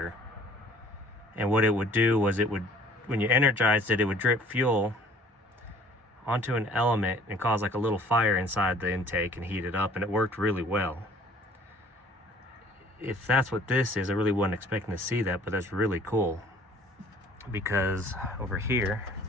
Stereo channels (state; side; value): normal; both; correlation 0.53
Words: and what it would do was it would, when you energized it, it would drip fuel onto an element and cause like a little fire inside the intake and heat it up, and it worked really well. If that's what this is, I really wasn't expecting to see that, but that's really cool, because over here,